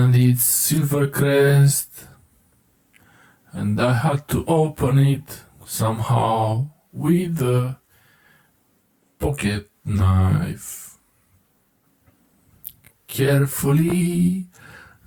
it's Silvercrest, and I had to open it somehow with a pocket knife, carefully,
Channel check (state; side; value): identical; both; correlation 1.00